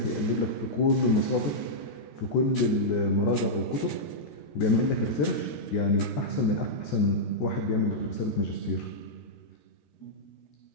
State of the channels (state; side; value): late; right; 13 ms